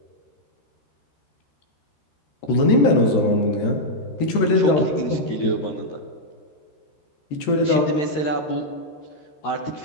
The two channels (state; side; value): late; right; 13 ms